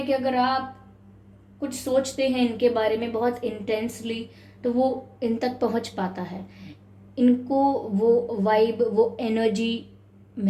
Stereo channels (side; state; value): both; identical; correlation 1.00